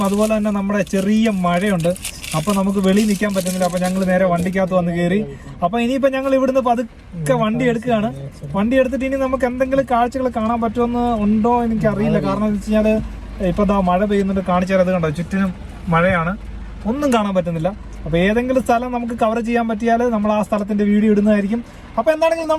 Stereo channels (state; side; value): identical; both; correlation 1.00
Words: അതുപോലെ തന്നെ നമ്മുടെ ചെറിയ മഴയുണ്ട്. അപ്പൊ നമുക്ക് വെളിയിൽ നിൽക്കാൻ പറ്റുന്നില്ല. അപ്പൊ ഞങ്ങൾ നേരെ വണ്ടിക്കകത്ത് വന്ന് കയറി. അപ്പൊ ഇനിയിപ്പോ ഞങ്ങൾ ഇവിടുന്ന് പതുക്കെ വണ്ടി എടുക്കുകയാണ്. വണ്ടി എടുത്തിട്ട് ഇനി നമുക്ക് എന്തെങ്കിലും കാഴ്ചകൾ കാണാൻ പറ്റുമെന്ന് ഉണ്ടോ എനിക്ക് അറിയില്ല. കാരണം എന്ന് വെച്ച് കഴിഞ്ഞാല് ഇപ്പൊ ദാ മഴ പെയ്യുന്നുണ്ട്. കാണിച്ചാൽ കണ്ടോ, ചുറ്റിനും മഴയാണ്, ഒന്നും കാണാൻ പറ്റുന്നില്ല. അപ്പൊ ഏതെങ്കിലും സ്ഥലം നമുക്ക് കവർ ചെയ്യാൻ പറ്റിയാൽ നമ്മൾ ആ സ്ഥലത്തിന്റെ വീഡിയോ ഇടുന്നതായിരിക്കും. അപ്പൊ എന്താണെങ്കിലും